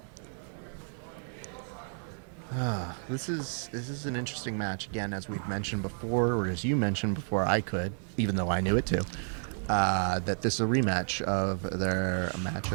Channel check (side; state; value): left; silent; 56 dB below the other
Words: This is an interesting match. Again, as we've mentioned before, or as you mentioned before I could, even though I knew it too, that this is a rematch of their